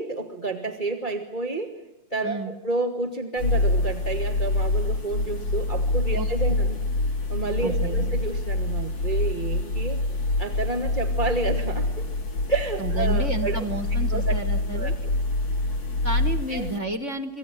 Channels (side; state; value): right; late; 5.6 ms